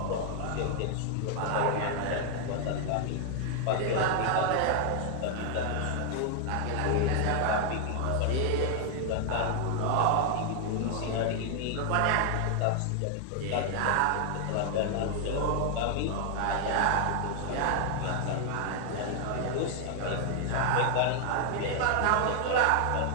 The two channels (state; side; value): different; both; correlation 0.00